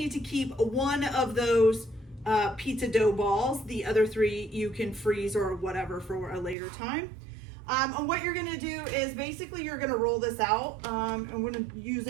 to keep 1 of those pizza dough balls. The other 3 you can freeze or whatever for a later time. And what you're gonna do is basically you're gonna roll this out. I'm gonna use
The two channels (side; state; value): left; drops out; at 6.6 s